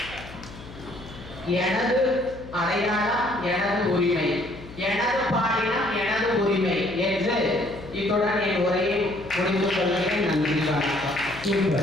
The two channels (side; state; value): left; noise; hum, 16 dB below the sound